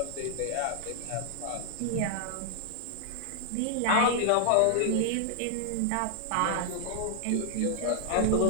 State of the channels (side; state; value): both; different; correlation 0.00